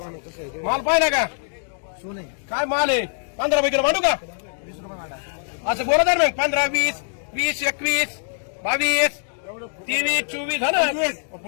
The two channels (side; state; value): right; silent; digital silence